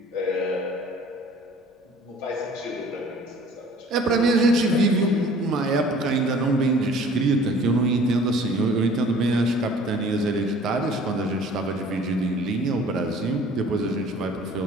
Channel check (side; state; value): both; normal; correlation 0.51